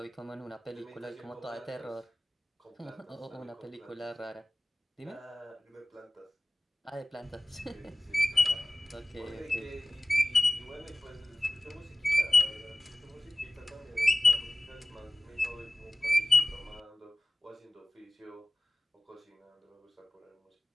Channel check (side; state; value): both; normal; correlation 0.96